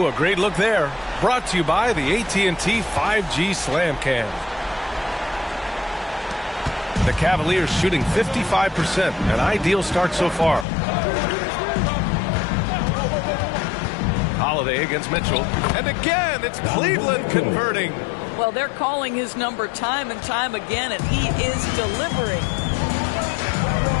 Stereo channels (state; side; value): drops out; right; at 10.7 s